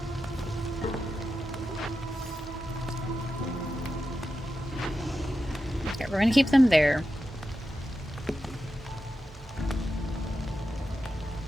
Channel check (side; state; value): both; normal; correlation 0.90